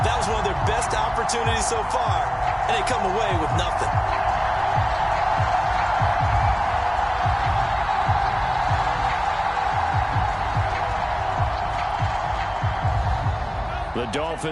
That was one of their best opportunities so far, and they come away with nothing. The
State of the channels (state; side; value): identical; both; correlation 1.00